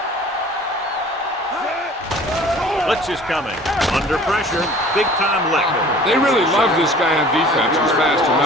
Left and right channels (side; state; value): both; normal; correlation 0.48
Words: Blitz is coming. Under pressure. Big time lick. They really love this guy on defense. He's fast